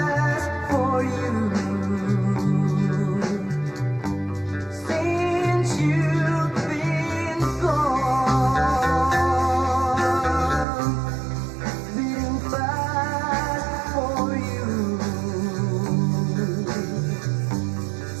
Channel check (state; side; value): drops out; left; at 10.7 s